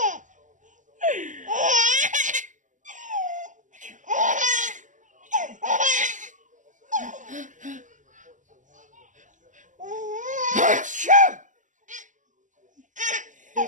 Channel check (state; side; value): late; left; 0.37 ms